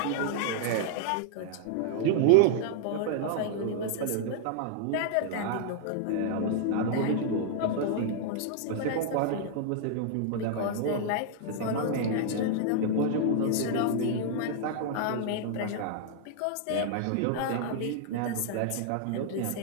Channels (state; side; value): different; both; correlation -0.01